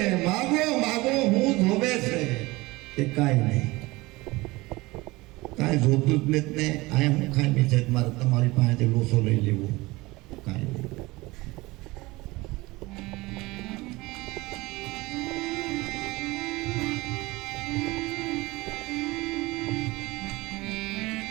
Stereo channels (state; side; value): quieter; left; 21.4 dB